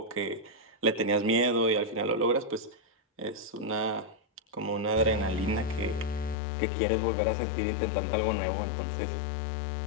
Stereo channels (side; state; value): right; drops out; at 6.4 s